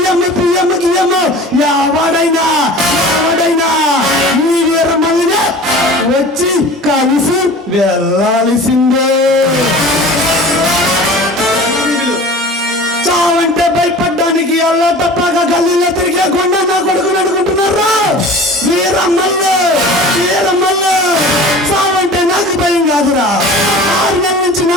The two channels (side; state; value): both; normal; correlation 0.40